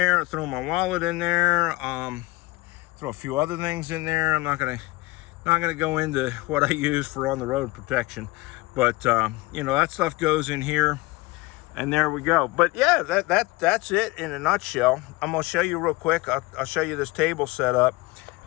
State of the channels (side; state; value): right; quieter; 21.7 dB